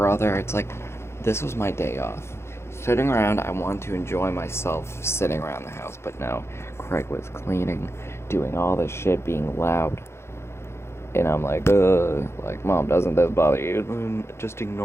it's like, this was my day off. Sitting around, I wanted to enjoy myself sitting around the house, but no. Craig was cleaning, doing all this shit, being loud. And I'm like, Mom, doesn't this bother you? Just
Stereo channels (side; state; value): right; late; 0.12 ms